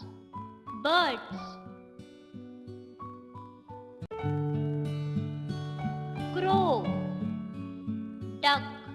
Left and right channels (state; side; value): identical; both; correlation 1.00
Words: Birds: crow, duck,